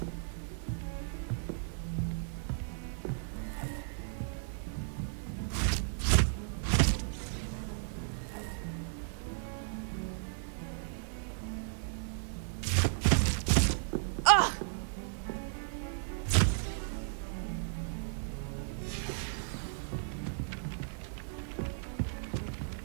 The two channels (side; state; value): left; silent; digital silence